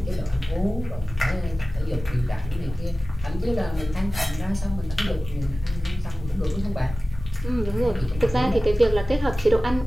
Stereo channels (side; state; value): both; normal; correlation 0.96